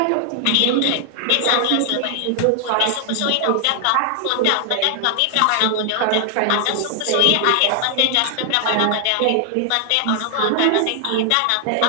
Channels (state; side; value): different; both; correlation 0.00